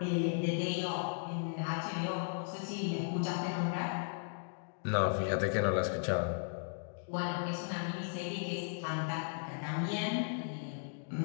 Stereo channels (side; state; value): right; silent; digital silence